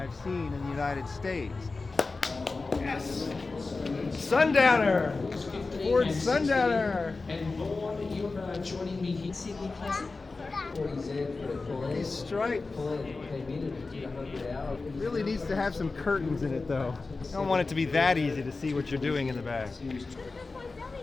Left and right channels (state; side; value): quieter; right; 3.8 dB